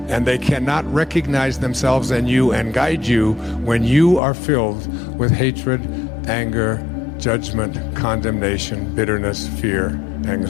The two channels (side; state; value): right; drops out; at 4.2 s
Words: And they cannot recognize themselves in you and guide you when you are filled with hatred, anger, judgment, condemnation, bitterness, fear,